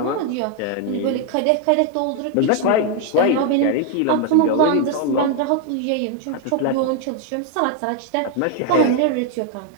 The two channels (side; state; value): both; different; correlation 0.00